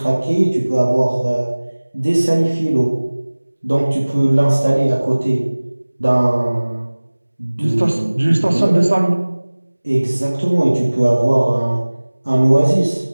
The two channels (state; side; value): inverted; both; correlation -1.00